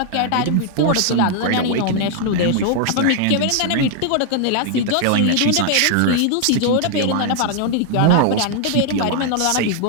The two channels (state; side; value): different; both; correlation 0.00